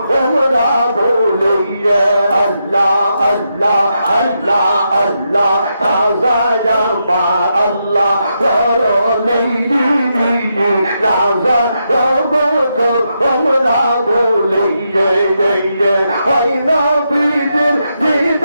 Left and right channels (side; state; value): both; inverted; correlation -0.83